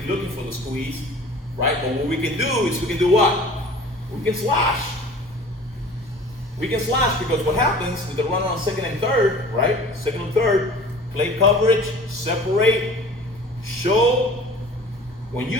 looking for the squeeze, right? But what we can do is we can do what? We can slash. We can slash because what happens with the runner on second and third, right? Second and third, play coverage, separate, show. When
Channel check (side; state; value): both; normal; correlation 0.44